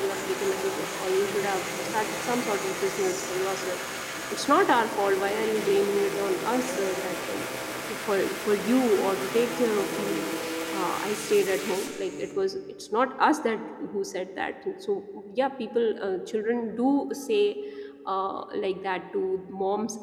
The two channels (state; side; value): identical; both; correlation 1.00